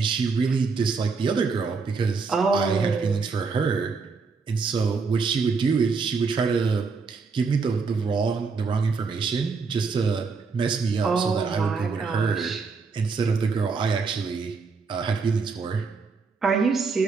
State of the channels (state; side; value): quieter; left; 4.8 dB